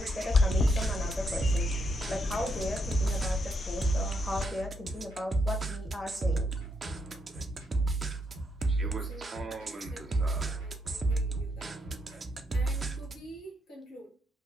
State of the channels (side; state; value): both; normal; correlation 0.78